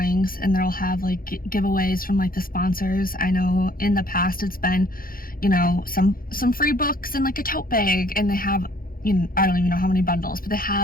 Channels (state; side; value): late; right; 0.42 ms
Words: and they'll have giveaways from the sponsors. I know in the past it's been some free books and a tote bag, and they have I don't even know how many bundles, but they